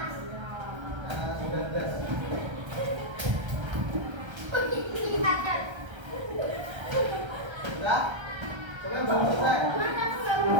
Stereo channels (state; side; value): late; left; 1.3 ms